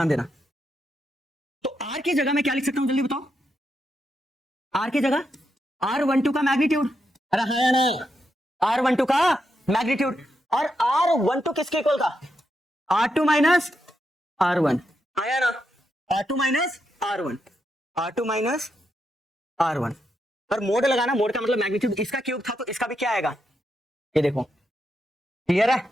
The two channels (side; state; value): both; normal; correlation 0.83